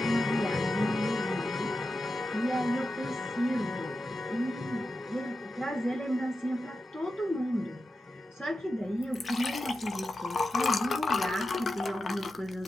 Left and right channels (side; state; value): both; normal; correlation 0.91